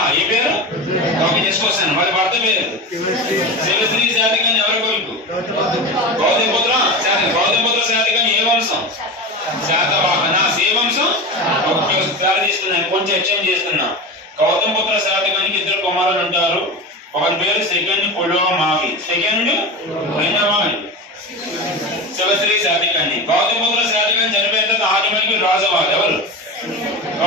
ఈ పేరు ఓకే చేసుకొస్తాను. వాళ్ళ భర్త పేరు శివశ్రీ శాతకాన్ని ఎవరి కొడుకు? గౌతమిపుత్ర శాతకం. గౌతమిపుత్ర శాతకాన్ని ఏ వంశం? శాతవాహన. ఏ వంశం? ఒకసారి తీసుకున్నాను, కొంచెం ఎక్స్చేంజ్ చేస్తున్నా. గౌతమిపుత్ర శాతకానికి ఇద్దరు కుమారులు ఉంటారు. ఒకరి పేరు సెకండ్ పులోమావి, సెకండ్ రెండవాణి. శివశ్రీ శాతకాన్ని. గౌతమిపుత్ర శాతకాన్ని చనిపోయిన తర్వాత ఆటోమేటిక్ రాజవాళ్ళు ఎవరు?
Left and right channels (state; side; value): normal; both; correlation 0.25